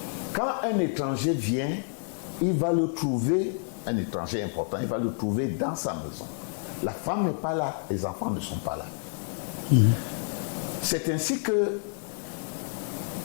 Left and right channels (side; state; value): right; silent; 59 dB below the other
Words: Quand un étranger vient, il va le trouver, un étranger important, il va le trouver dans sa maison. La femme n'est pas là, les enfants ne sont pas là. C'est ainsi que